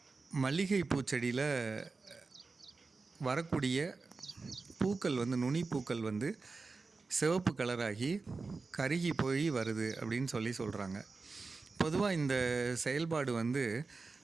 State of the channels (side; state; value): left; quieter; 4.1 dB